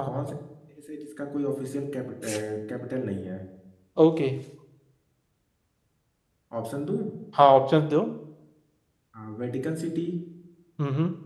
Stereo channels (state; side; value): identical; both; correlation 1.00